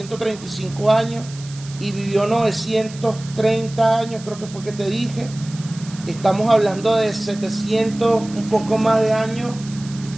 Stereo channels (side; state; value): right; noise; hiss, 18 dB below the sound